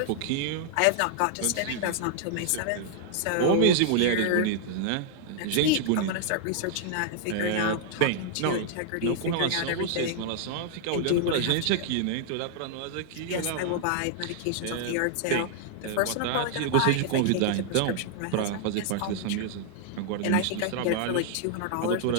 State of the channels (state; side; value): different; both; correlation -0.01